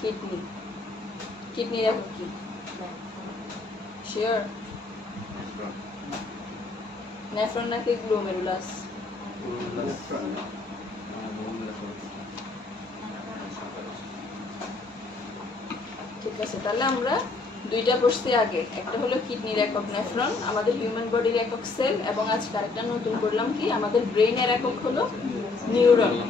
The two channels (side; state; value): right; quieter; 3.8 dB